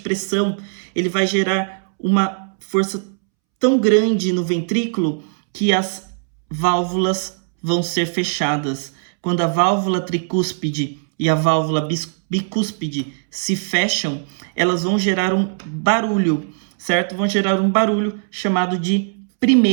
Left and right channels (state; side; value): silent; left; 66 dB below the other